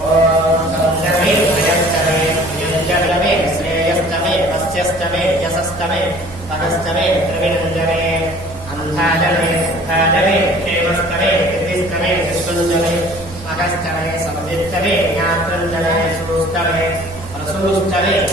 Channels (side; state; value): both; normal; correlation 0.50